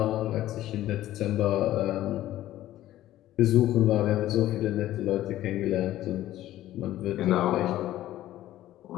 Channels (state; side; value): quieter; right; 14.0 dB